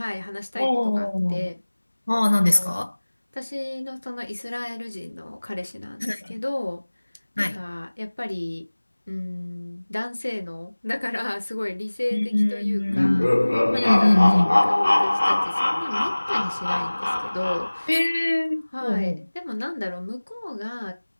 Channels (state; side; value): inverted; both; correlation -1.00